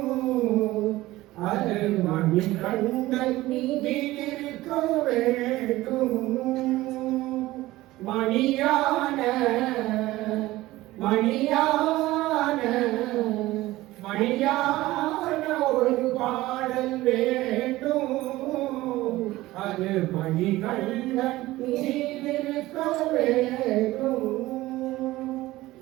அது மணிகண்டன் மீதிருக்க வேண்டும். மணியான மணியான மணியான ஒரு பாடல் வேண்டும், அது மணிகண்டன் மீதிருக்க வேண்டும்.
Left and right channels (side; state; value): left; quieter; 17.6 dB